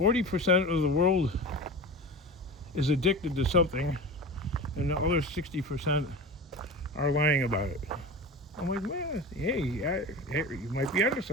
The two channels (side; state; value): both; normal; correlation 0.31